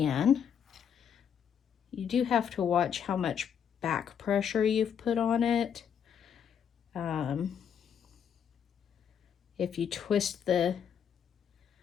You do have to watch how much back pressure you've put on it. If you twist the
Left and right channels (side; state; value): right; quieter; 8.1 dB